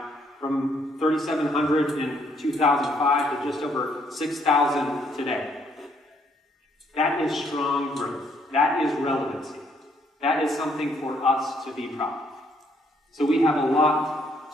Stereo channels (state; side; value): normal; both; correlation 0.69